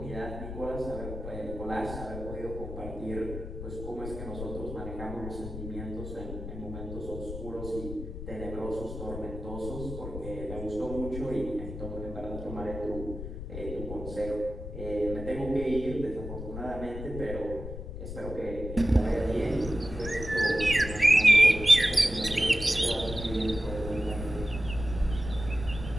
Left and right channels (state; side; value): noise; left; rumble, 8 dB below the sound